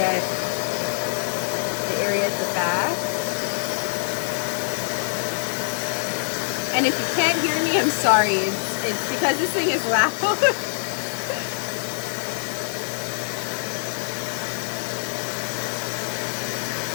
the area at the back. And if you can't hear me, I'm sorry. It's because this thing is loud.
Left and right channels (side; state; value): right; silent; digital silence